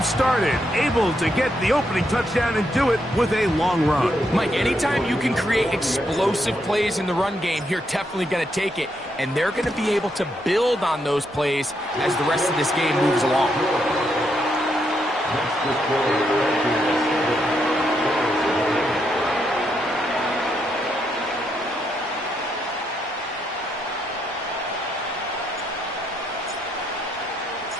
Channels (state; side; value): normal; both; correlation 0.78